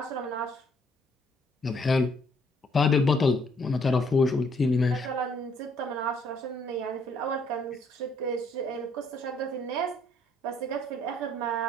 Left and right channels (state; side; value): normal; both; correlation 0.66